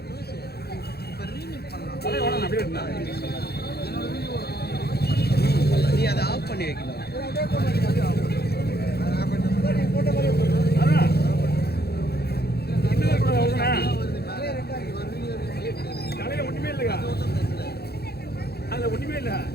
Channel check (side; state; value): right; late; 0.46 ms